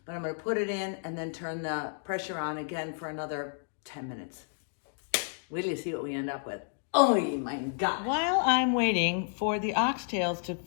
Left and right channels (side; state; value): right; silent; digital silence